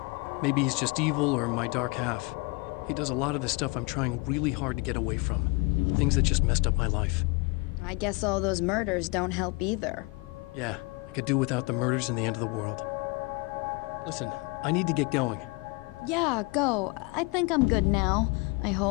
Maybe he's just evil or my dark half. He does a lot of the stuff I'm trying really hard to get away from. Things that just messed up my life. I guess all those murders don't help either. Yeah, could do without the murders and the end of the world. Listen, I need to get going. Yeah, go. I think I'm good now. I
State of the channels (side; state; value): right; quieter; 27.2 dB